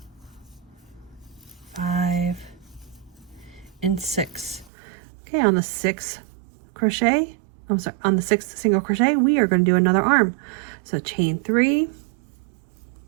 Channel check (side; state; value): left; drops out; at 4.7 s